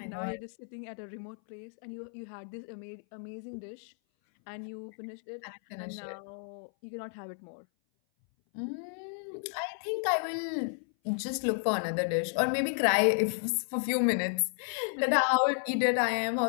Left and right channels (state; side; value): silent; right; 56 dB below the other